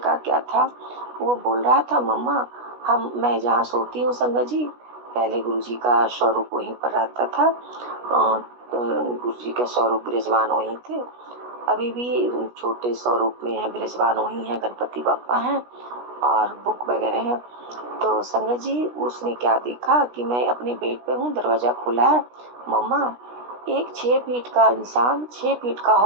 क्या था। वो बोल रहा था, मम्मा मैं जहाँ सोती हूँ संगत जी, पहले गुरुजी का स्वरूप वहीं पर रहता था। गुरुजी के स्वरूप विराजमान वहीं थे, अभी भी छोटे स्वरूप में है, विराजमान वहीं है, गणपति बप्पा हैं और बुक वगैरह है। तो संगत जी उसने क्या देखा कि मैं अपने बेड पे हूँ, दरवाजा खुला है। मम्मा, एक 6 फीट का इंसान 6 फीट का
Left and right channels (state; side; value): late; left; 16 ms